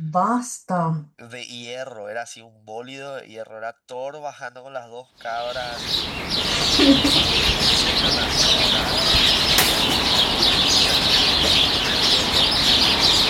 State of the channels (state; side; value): identical; both; correlation 1.00